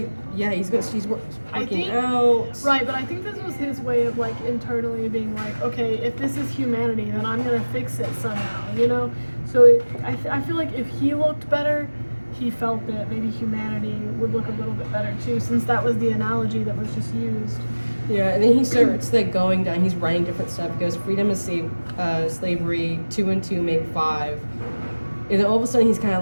he's I working think- out. Right, but I think this was his way of like internally being like, okay, if this is humanity, then I'm gonna fix it somehow, you know. So I feel like if he looked better, he felt that maybe humanity would look a little bit better too, since that was the analogy that was just used. Yeah, and then he starts like going down. He's writing different stuff. He goes, freedom is slavery. 2 and 2 make 5. And then all of a sudden he's kind of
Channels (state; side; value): inverted; both; correlation -1.00